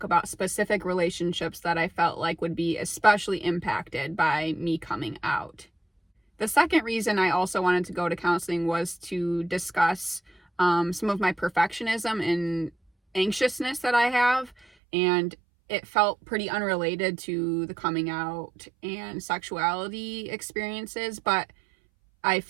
about specific relationships that I felt like would be especially impacted by me coming out. The second reason I also wanted to go to counseling was to discuss some of my perfectionism and anxiousness that I have, and it felt pretty unrelated to the coming out and sexuality experiences, but I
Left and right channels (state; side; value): drops out; left; at 14.7 s